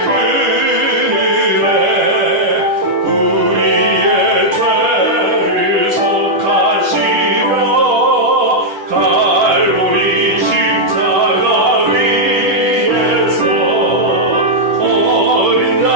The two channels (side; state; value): left; late; 10 ms